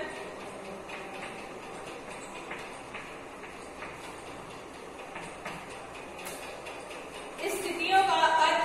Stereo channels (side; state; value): both; identical; correlation 1.00